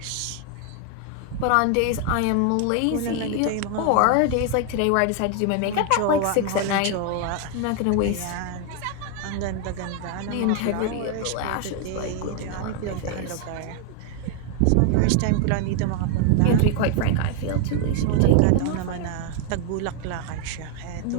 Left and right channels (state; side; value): different; both; correlation 0.01